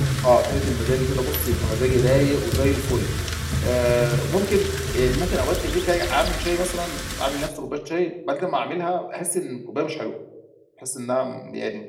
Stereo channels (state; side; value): identical; both; correlation 1.00